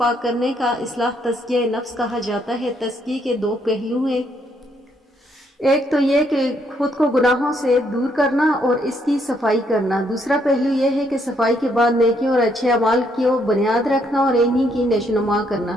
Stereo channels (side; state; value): both; normal; correlation 0.72